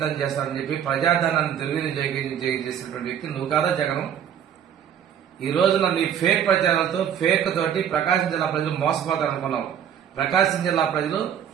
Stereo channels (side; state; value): left; quieter; 9.0 dB